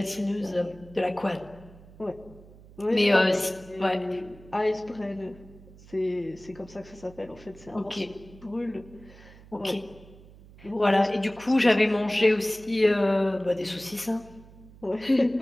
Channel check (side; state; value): right; noise; hum, 21 dB below the sound